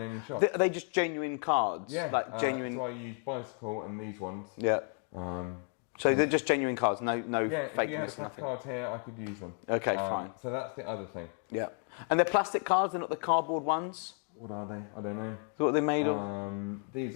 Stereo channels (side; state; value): right; quieter; 38.4 dB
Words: shop. Are they just genuine cards? Yeah. Like genuine. So I use bicycle and these ones. Yeah. So they're just genuine cards, no Yeah, fake. if you had a pack of cards here, I could use them. Okay, fine. So that's the other thing. Yeah. And they're plastic cards, they're not the cardboard ones? What are they? I don't know. What are they made of?